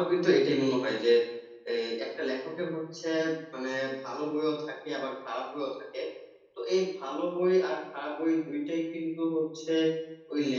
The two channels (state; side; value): identical; both; correlation 1.00